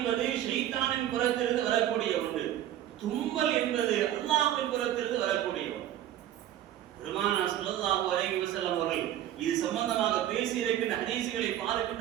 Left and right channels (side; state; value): left; quieter; 12.0 dB